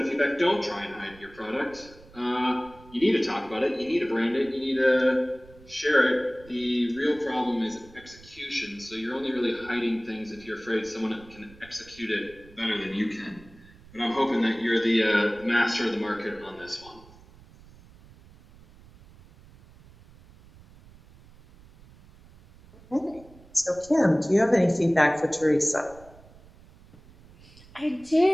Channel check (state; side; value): noise; right; rumble, 23 dB below the sound